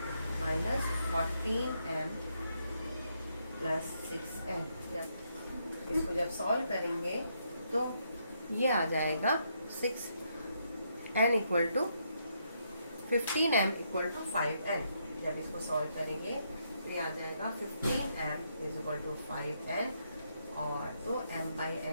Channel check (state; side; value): inverted; both; correlation -0.77